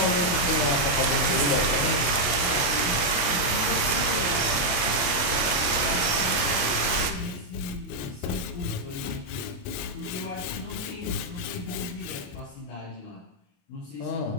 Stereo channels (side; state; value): right; late; 28 ms